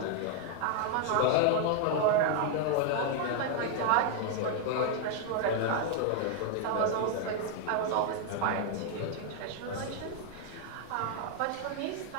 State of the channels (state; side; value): different; both; correlation 0.00